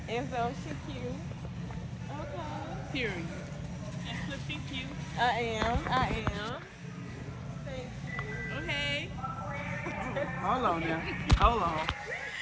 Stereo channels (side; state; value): both; identical; correlation 1.00